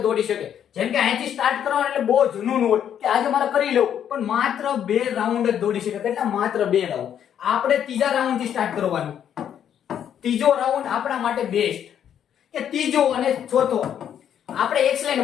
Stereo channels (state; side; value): quieter; right; 9.4 dB